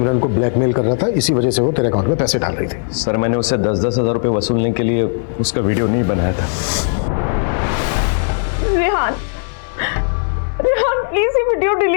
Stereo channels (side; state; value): right; silent; 60 dB below the other